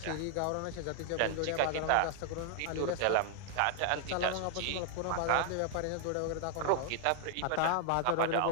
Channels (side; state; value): both; different; correlation 0.00